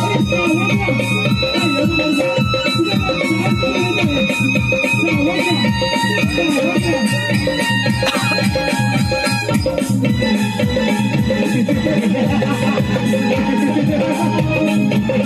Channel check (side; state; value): both; identical; correlation 1.00